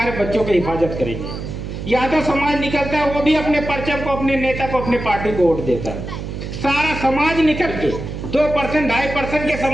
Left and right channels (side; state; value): right; noise; hum, 7 dB below the sound